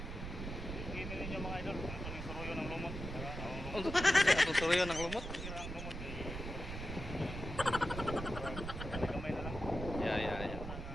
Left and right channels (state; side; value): noise; right; rumble, 7 dB below the sound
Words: Gini ninyo mga idol, ito yung suruyo ng lumot. Ang suruyo ng lumot. Ang lumot ay gamay na lang. Ya.